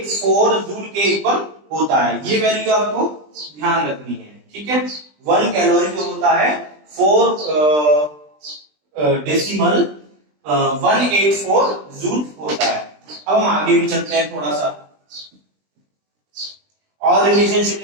जूल के इक्वल होता है। ये वैल्यू आपको ध्यान रखनी है, ठीक है। 1 कैलोरी जो होता है 4.184 जूल होता है। अब हम आगे भी चलते हैं, थोड़ा सा और रिलेशनशिप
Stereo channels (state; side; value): late; left; 20 ms